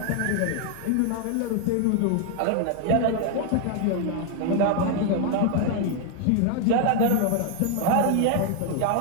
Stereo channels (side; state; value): both; different; correlation 0.00